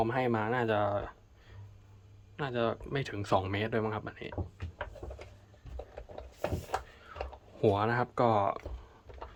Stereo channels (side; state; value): both; identical; correlation 1.00